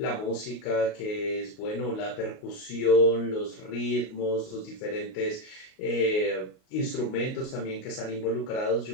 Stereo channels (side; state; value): right; late; 38 ms